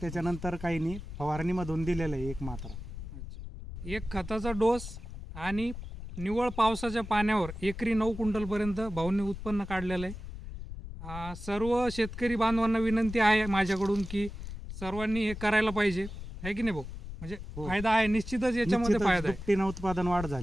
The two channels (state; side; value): noise; left; rumble, 10 dB below the sound